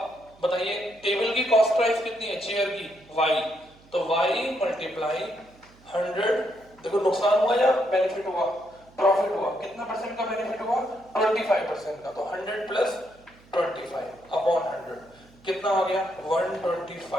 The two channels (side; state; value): right; noise; hum, 27 dB below the sound